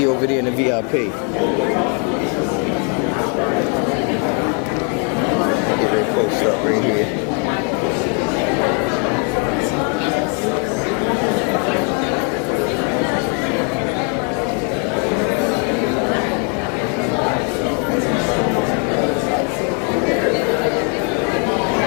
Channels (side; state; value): right; quieter; 38.9 dB